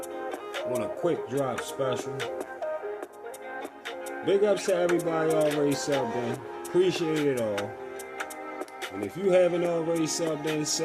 on a quick drop special. Big ups to everybody already subbed in. Appreciate it all. And if you haven't already subbed in,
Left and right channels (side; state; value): both; identical; correlation 1.00